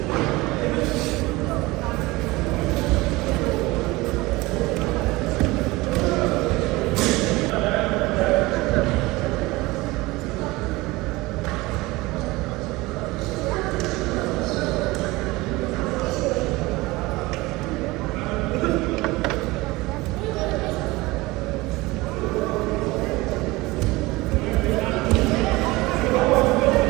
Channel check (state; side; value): quieter; left; 21.2 dB